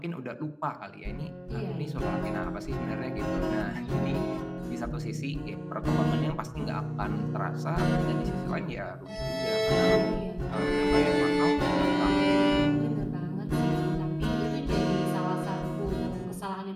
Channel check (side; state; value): both; identical; correlation 1.00